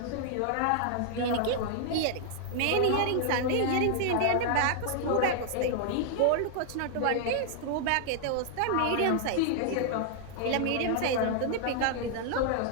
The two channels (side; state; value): both; different; correlation 0.00